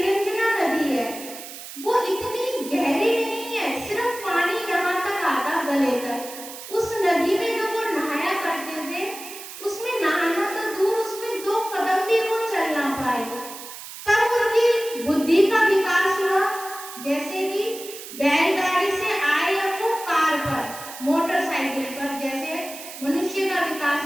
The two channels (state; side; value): noise; right; hiss, 12 dB below the sound